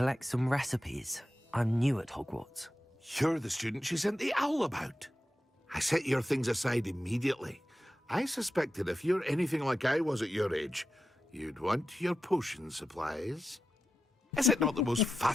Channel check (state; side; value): normal; both; correlation 0.91